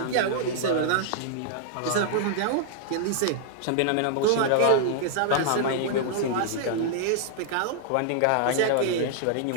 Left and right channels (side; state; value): both; different; correlation -0.01